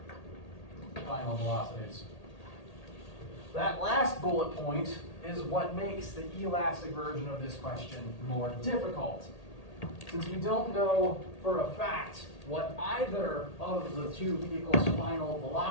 final velocities. That last bullet point is what makes the elastic version of this question more difficult. Since we don't know for a fact what either of the two vehicles' final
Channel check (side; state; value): right; late; 1.8 ms